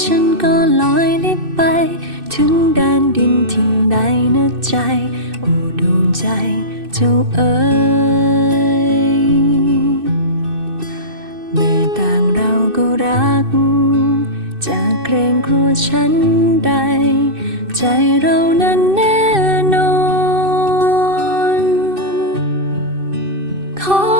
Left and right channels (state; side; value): late; left; 2.6 ms